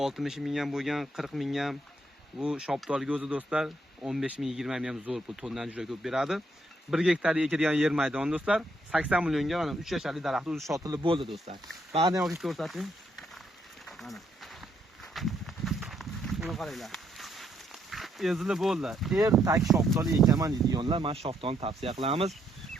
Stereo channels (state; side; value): normal; both; correlation 0.74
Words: ming ham bo'lgan, 40 ming ham. Bu shoptolga o'zi do'stlar 15 ming, 20 ming ham zo'r pul, tondan juda ko'p beradi. 1 gektarga ekilgan yer maydon do'stlar 80 millionga mana 3 yasharli daraxt o'zi sotilib bo'ldi do'stlar. Ba'zan olib ko'rsating. Mana. Buni qaranglar. Ezilib bo'ldi. Ertak shoptoli ekaman deydiganlar mana shoptolni tavsiya qilamiz.